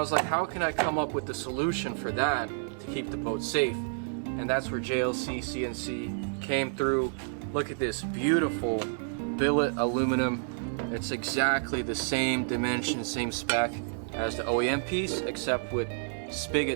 like, how can I come up with the solution for that to keep the boat safe? And that's where JLC CNC came through. Look at this beautiful billet aluminum. It's exactly the same dimension, same spec as the OEM piece, except with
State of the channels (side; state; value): left; silent; digital silence